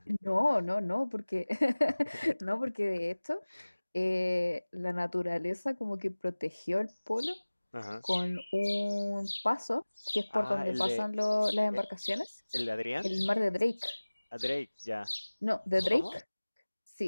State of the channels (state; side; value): inverted; both; correlation -1.00